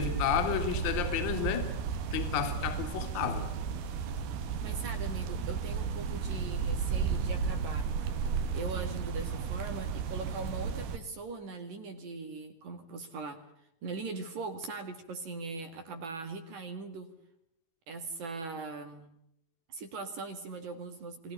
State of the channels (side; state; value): left; late; 12 ms